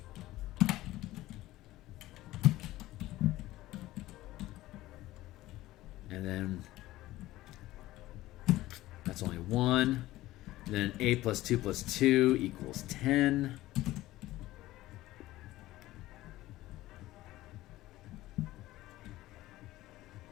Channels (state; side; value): quieter; right; 16.6 dB